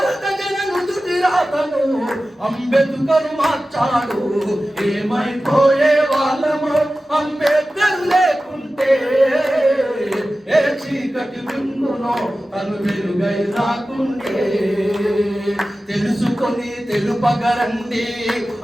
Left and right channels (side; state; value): both; normal; correlation 0.95